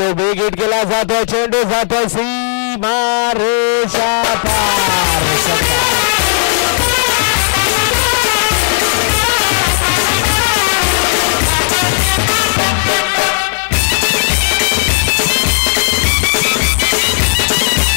बिग हिट केला जातोय. चेंडू जातोय सीमा रेषा पार.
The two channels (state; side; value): silent; right; digital silence